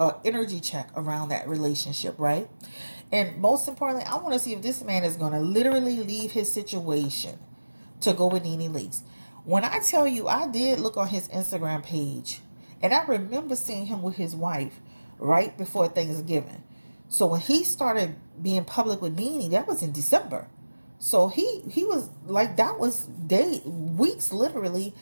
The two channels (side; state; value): both; inverted; correlation -1.00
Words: energy check around that relationship, right? And most importantly, I want to see if this man is going to literally leave his situation to go with Nene Leakes. When I tell you, I did look on his Instagram page, and I remember seeing him with his wife right before Thanksgiving. So when he started being public with Nene, that was in December. So he was like, that was weeks literally